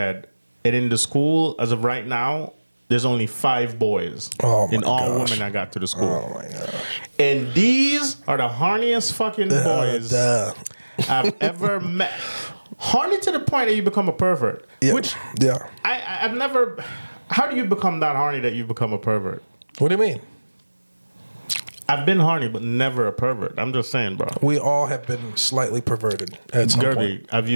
And in the school, as of right now, there's only 5 boys. Oh my and all gosh. women that got to the school. Oh my gosh. And these are the horniest fucking boys Duh. I've ever met. Horny to the point that you become a pervert. Yeah. Which Yeah. I've never. How do you become that horny that you become a pervert? What do you mean? I've been horny, but never a pervert. I'm just saying, bro. We all have been slightly perverted at some point. Guerby, have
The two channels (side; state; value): both; inverted; correlation -1.00